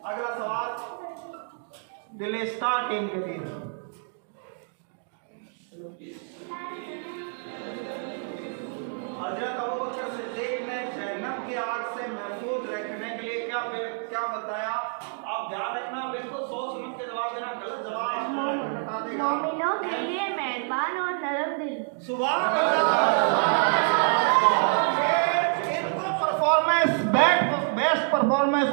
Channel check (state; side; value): silent; left; 58 dB below the other